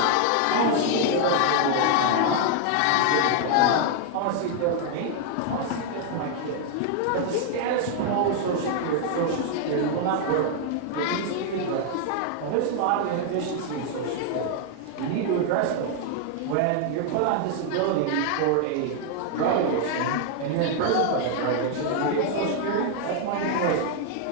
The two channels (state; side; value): different; both; correlation 0.00